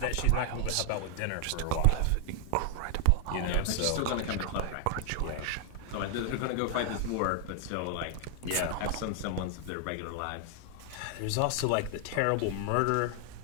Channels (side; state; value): both; different; correlation 0.00